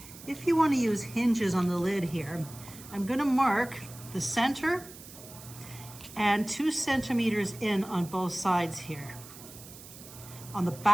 If you want to use hinges on the lid here, I'm going to mark the center and 2 centimeters in on both sides here, on the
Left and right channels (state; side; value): noise; right; hiss, 17 dB below the sound